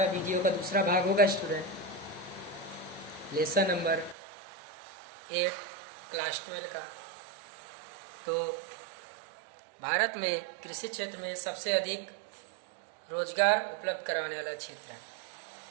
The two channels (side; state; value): left; drops out; at 4.2 s